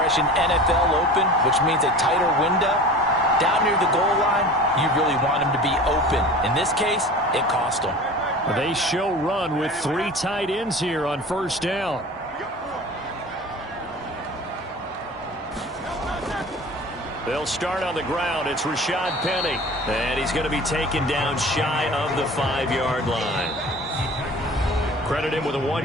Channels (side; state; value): both; normal; correlation 0.39